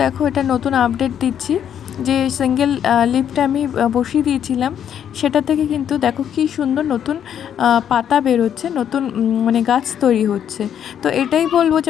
দেখো এটা নতুন আপডেট দিচ্ছি, যে সিঙ্গেল লিফটা আমি বসিয়ে দিয়েছিলাম, সেটা থেকে কিন্তু দেখো কি সুন্দর নতুন পাতা বেরোচ্ছে, নতুন মানে গাছ তৈরি হচ্ছে। তো এটাই বলবো যে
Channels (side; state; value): right; quieter; 9.2 dB